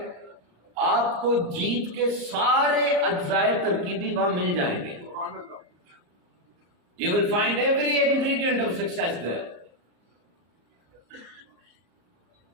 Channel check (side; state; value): left; late; 34 ms